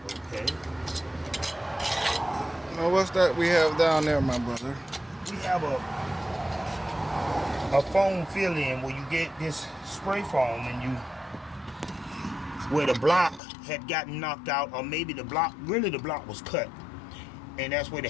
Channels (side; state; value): right; drops out; at 13.4 s